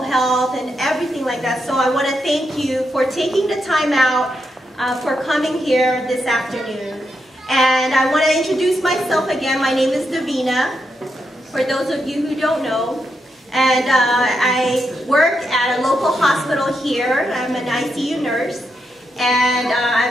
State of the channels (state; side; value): normal; both; correlation 0.83